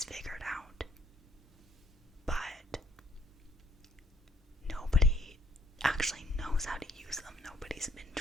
figured out. But nobody actually knows how to use them. Nobody's been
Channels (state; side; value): normal; both; correlation 0.65